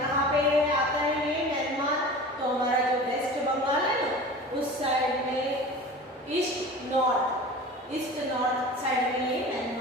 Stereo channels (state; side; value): normal; both; correlation 0.37